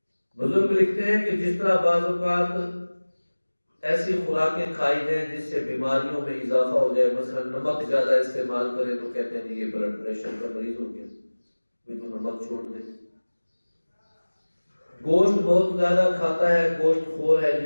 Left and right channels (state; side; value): inverted; both; correlation -1.00